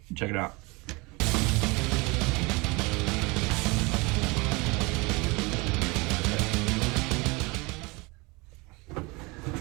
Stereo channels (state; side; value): quieter; left; 26.0 dB